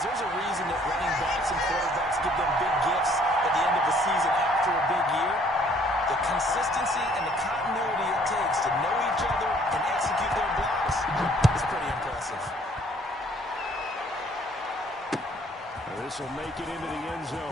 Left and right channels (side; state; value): both; normal; correlation 0.60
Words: there's a reason that running backs and quarterbacks give them big gifts at the end of the season after a big year. The consistency and the continuity it takes to know each other and execute their blocks is pretty impressive. This will make it into the end